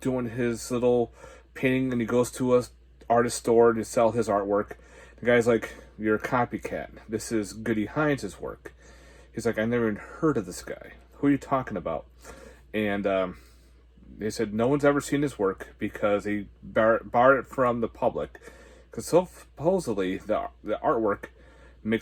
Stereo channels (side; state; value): both; identical; correlation 1.00